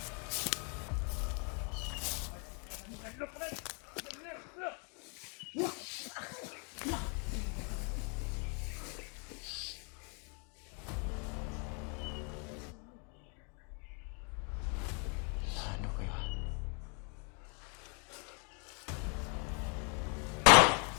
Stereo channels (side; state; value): right; quieter; 37.1 dB